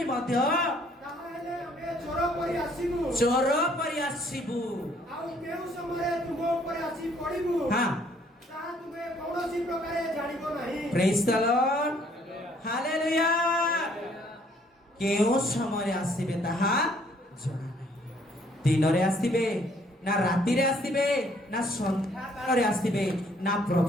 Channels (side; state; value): both; normal; correlation 0.63